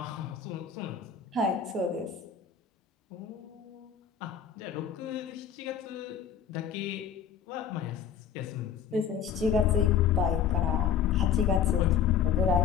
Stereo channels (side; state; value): right; quieter; 7.8 dB